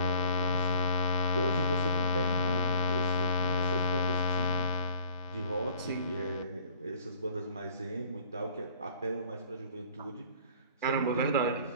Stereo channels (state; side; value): inverted; both; correlation -0.53